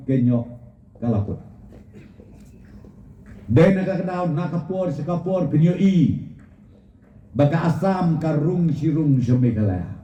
kenyok kalaput dan nakakadaw nakapor sekapor penyoi baka asam karung sirung semegala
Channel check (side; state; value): both; identical; correlation 1.00